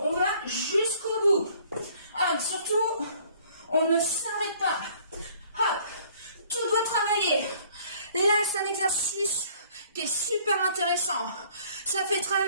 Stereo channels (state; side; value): inverted; both; correlation -0.58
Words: exercice qui est super intéressant. Ça fait